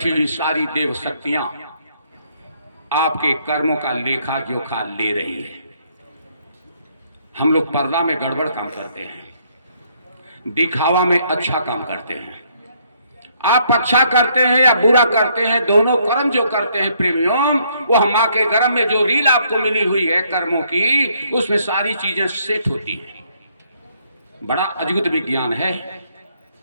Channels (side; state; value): both; inverted; correlation -0.69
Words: हुई सारी देव शक्तियां आपके कर्मों का लेखा जोखा ले रही है। हम लोग पर्दा में गड़बड़ काम करते हैं, दिखावा में अच्छा काम करते हैं। आप अच्छा करते हैं या बुरा करते हैं, दोनों कर्म जो करते हैं प्रेमियों, वो मां के गर्भ में जो रील आपको मिली हुई है कर्मों की, उसमें सारी चीजें सेट होती हैं। बड़ा अद्भुत विज्ञान है।